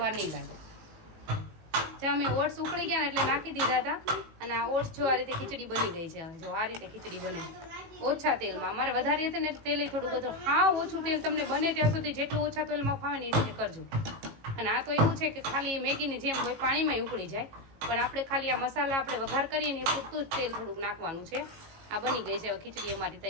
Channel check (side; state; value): left; late; 18 ms